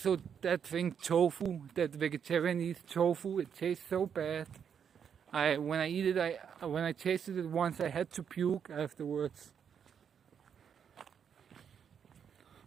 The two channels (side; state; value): left; quieter; 7.6 dB